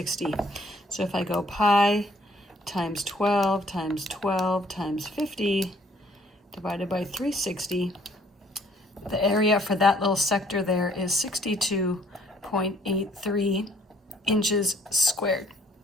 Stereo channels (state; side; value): normal; both; correlation 0.62